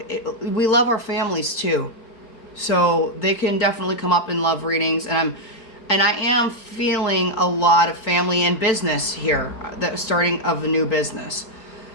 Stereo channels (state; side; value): late; right; 4.5 ms